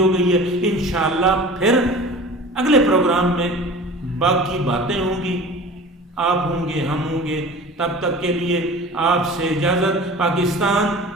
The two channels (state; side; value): normal; both; correlation 0.40